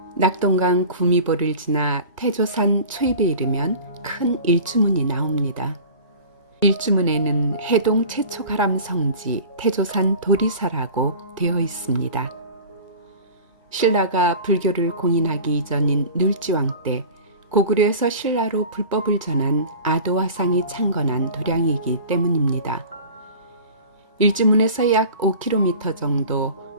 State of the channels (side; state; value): both; inverted; correlation -0.38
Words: 낙동강 구미보를 지나 태조산 초입에 이르면 큰 일주문이 나옵니다. 일주문에는 해동 최초 가람 성지 태조산 도리사라고 되어 있습니다. 신라가 불교를 공인하기 이전인 눌지왕 때 고구려에서 신라로 불법을 전한 아도화상이 창건한 도량이기 때문입니다. 일주문에서 약 5km